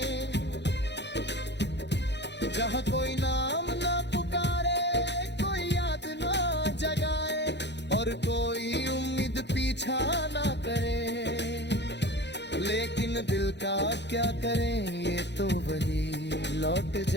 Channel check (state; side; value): late; right; 0.50 ms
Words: जहाँ कोई नाम ना पुकारे, कोई याद ना जगाए और कोई उम्मीद पीछा ना करे। लेकिन दिल का क्या करें, ये तो वही लौट